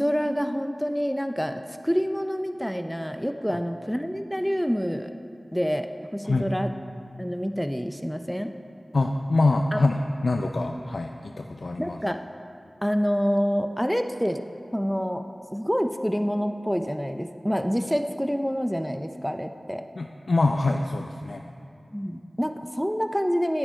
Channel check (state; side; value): normal; both; correlation 0.98